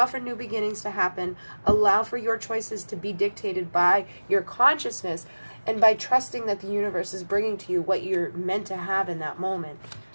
for new beginnings to happen. Allow for your choices to be dictated by your consciousness, and by trusting that the universe is bringing to you what you're meant to have in that moment.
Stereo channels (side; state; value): both; inverted; correlation -1.00